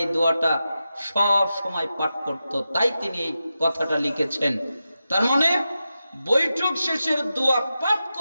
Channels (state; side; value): inverted; both; correlation -0.91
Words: এই দোয়াটা সব সময় পাঠ করত, তাই তিনি এই কথাটা লিখেছেন। তার মানে বৈঠক শেষের দোয়া পাঠ